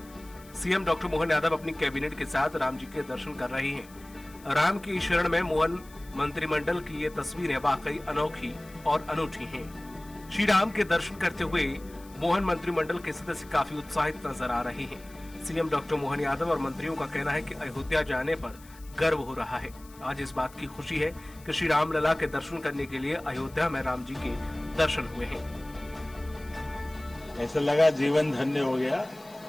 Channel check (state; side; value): noise; left; hiss, 23 dB below the sound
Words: सीएम डॉक्टर मोहन यादव अपनी कैबिनेट के साथ राम जी के दर्शन कर रहे हैं। राम की शरण में मोहन मंत्रिमंडल की ये तस्वीरें वाकई अनोखी और अनूठी हैं। श्री राम के दर्शन करते हुए मोहन मंत्रिमंडल के सदस्य काफी उत्साहित नजर आ रहे हैं। सीएम डॉक्टर मोहन यादव और मंत्रियों का कहना है कि अयोध्या जाने पर गर्व हो रहा है। आज इस बात की खुशी है कि श्री राम लला के दर्शन करने के लिए अयोध्या में राम जी के दर्शन हुए हैं। ऐसा लगा जीवन धन्य हो गया।